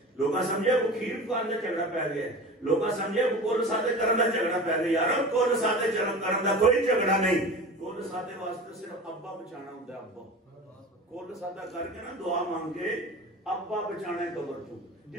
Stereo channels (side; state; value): both; normal; correlation 0.34